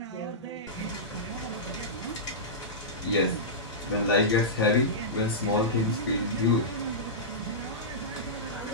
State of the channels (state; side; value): normal; both; correlation -0.15